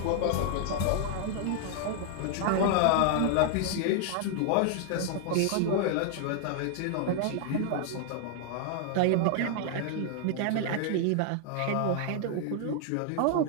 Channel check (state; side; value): different; both; correlation 0.00